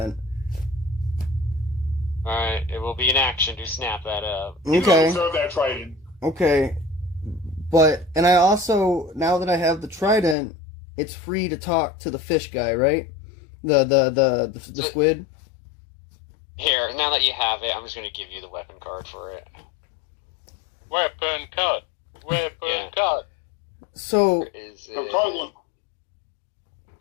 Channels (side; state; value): right; drops out; at 10.4 s